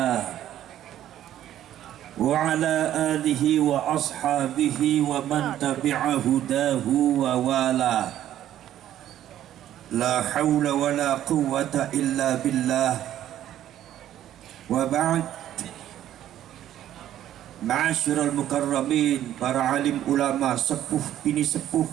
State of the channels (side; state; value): left; quieter; 11.9 dB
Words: wa ala alihi wa ashabihi wa man tabi'a hudahu wa wala. La hawla wa la quwwata illa billah. Wa ba'd. Ma'asyiral mukarramin, para alim ulama, sepuh bini sepuh,